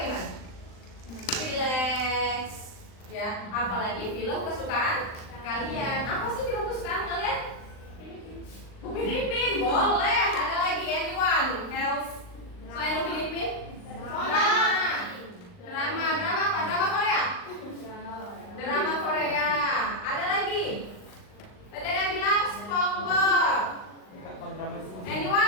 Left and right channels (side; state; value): right; late; 39 ms